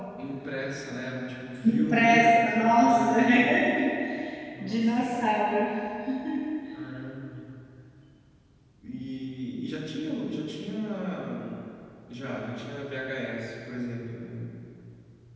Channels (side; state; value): both; identical; correlation 1.00